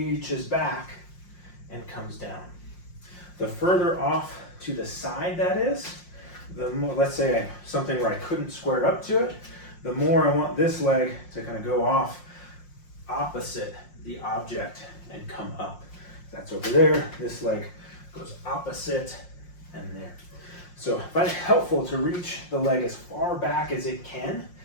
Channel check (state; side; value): late; right; 5.6 ms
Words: back and comes down. The further off to the side that is, the more, let's say something where I couldn't square up to it, the more I want this leg to kind of go off opposite the object and come up. That's over there, this leg goes opposite and there. So I find it helpful to reach the leg as far back as it can